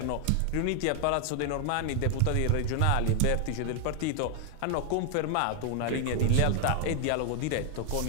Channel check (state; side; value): different; both; correlation 0.00